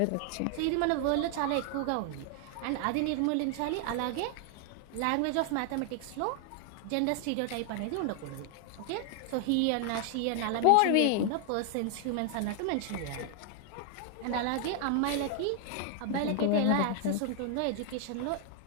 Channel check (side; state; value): both; different; correlation 0.00